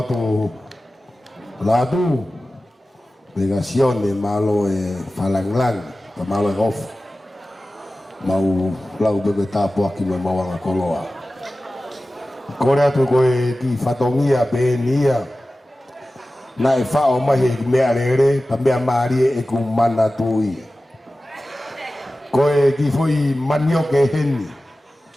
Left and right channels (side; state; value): both; normal; correlation 0.95